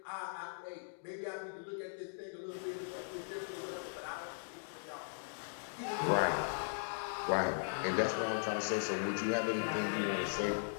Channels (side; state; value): right; silent; digital silence